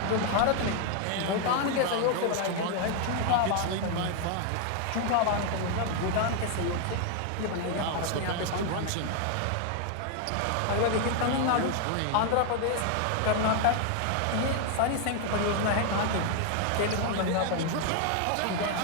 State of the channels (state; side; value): different; both; correlation 0.00